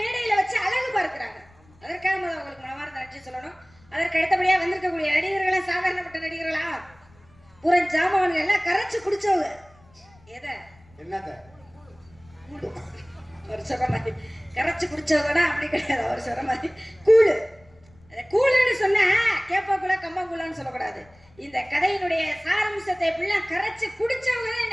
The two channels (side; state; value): left; noise; rumble, 29 dB below the sound